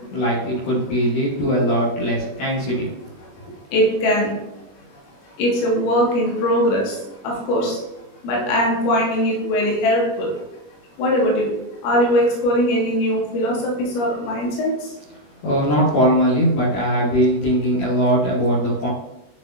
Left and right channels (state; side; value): late; right; 21 ms